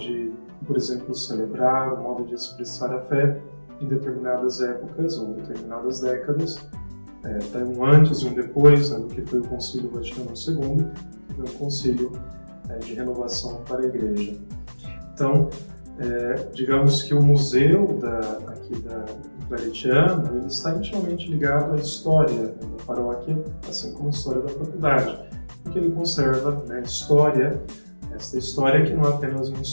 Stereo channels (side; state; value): both; inverted; correlation -1.00